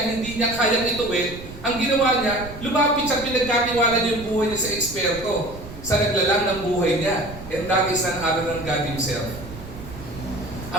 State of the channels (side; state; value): right; noise; rumble, 14 dB below the sound